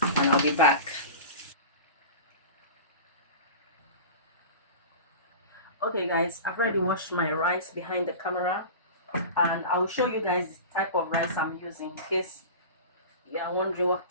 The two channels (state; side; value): inverted; both; correlation -0.33